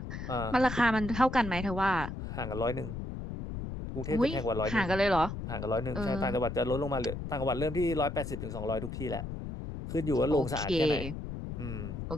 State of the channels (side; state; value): left; noise; rumble, 7 dB below the sound